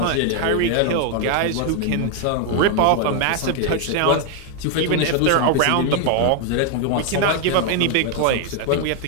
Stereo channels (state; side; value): different; both; correlation 0.01